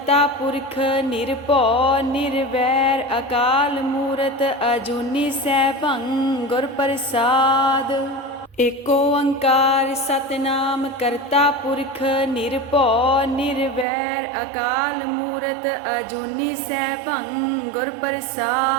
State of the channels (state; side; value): drops out; left; at 13.9 s